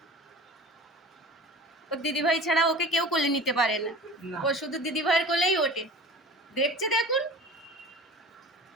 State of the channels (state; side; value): normal; both; correlation 0.39